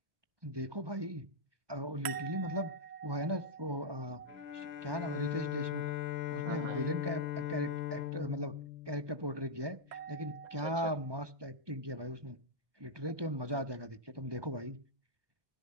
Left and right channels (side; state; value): left; late; 1.2 ms